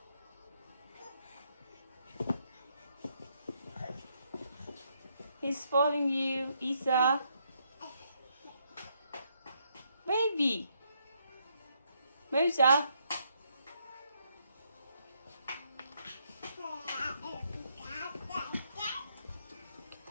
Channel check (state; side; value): inverted; both; correlation -0.75